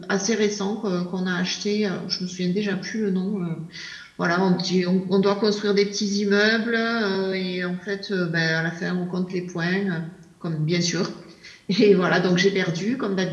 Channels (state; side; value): identical; both; correlation 1.00